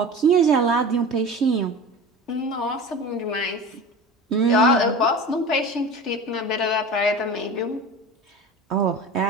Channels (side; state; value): both; normal; correlation 0.34